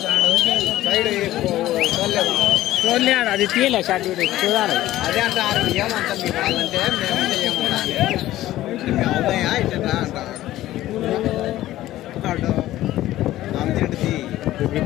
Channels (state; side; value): quieter; right; 14.9 dB